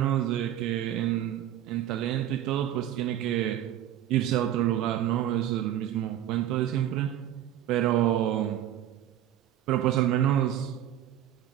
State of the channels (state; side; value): quieter; left; 11.7 dB